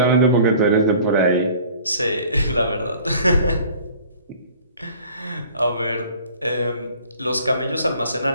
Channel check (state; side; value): inverted; both; correlation -0.49